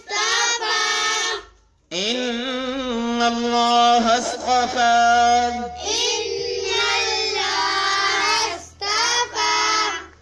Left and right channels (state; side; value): identical; both; correlation 1.00